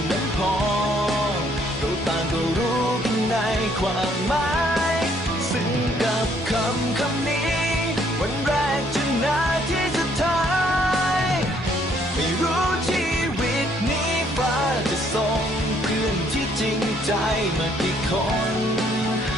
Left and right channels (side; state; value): both; normal; correlation 0.66